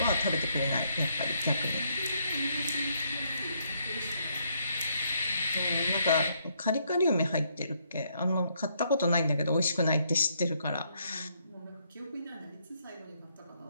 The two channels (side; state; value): both; inverted; correlation -0.73